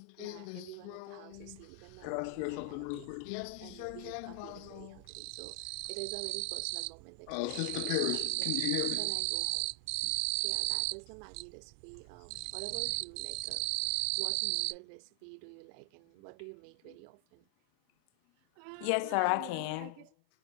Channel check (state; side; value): different; both; correlation 0.00